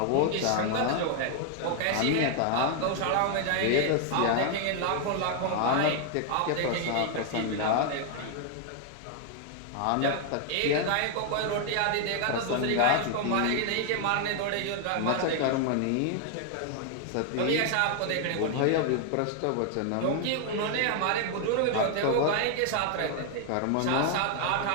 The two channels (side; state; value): both; different; correlation 0.00